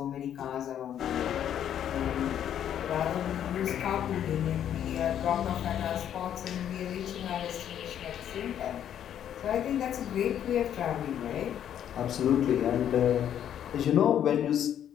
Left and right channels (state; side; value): quieter; right; 10.0 dB